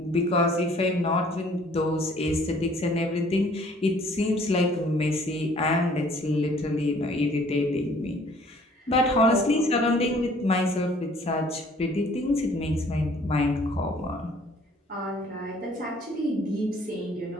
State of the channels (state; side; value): normal; both; correlation 0.57